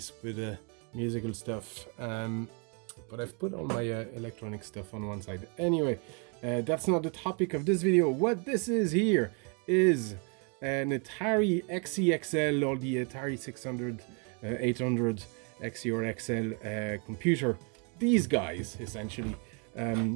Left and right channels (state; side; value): quieter; left; 36.3 dB